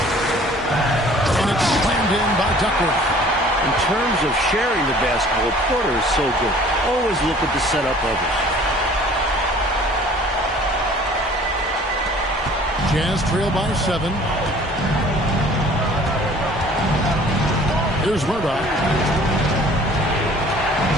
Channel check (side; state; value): both; normal; correlation 0.51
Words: And it's slammed in by Duckworth. In terms of sharing the basketball, Porter is so good. Always looking to set up others. Jazz trail by 7. Here's Murdoch.